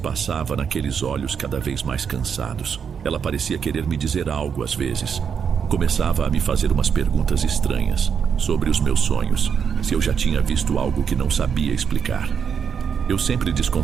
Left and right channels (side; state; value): left; quieter; 7.0 dB